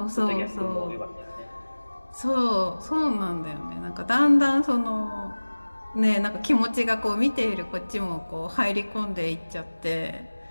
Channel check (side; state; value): both; inverted; correlation -1.00